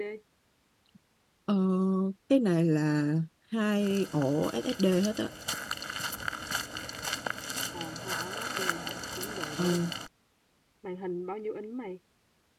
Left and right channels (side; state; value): both; identical; correlation 1.00